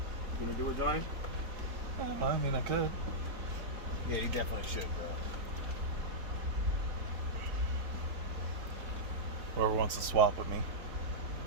You gonna do it, Johnny? I mean, I could. Yeah, you definitely should, bro. Whoever wants to swap with me.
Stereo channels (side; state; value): left; late; 4.4 ms